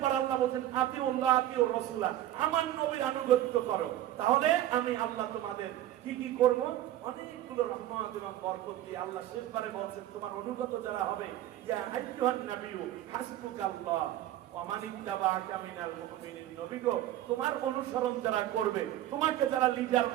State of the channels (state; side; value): quieter; left; 13.2 dB